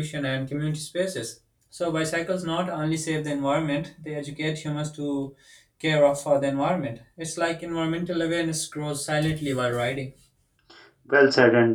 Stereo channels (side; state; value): both; identical; correlation 1.00